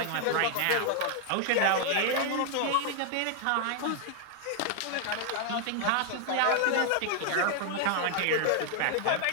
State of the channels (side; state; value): both; different; correlation 0.00